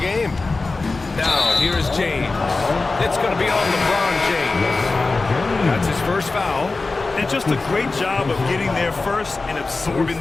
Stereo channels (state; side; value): quieter; right; 3.6 dB